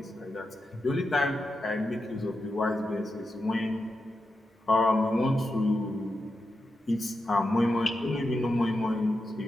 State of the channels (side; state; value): both; normal; correlation 0.88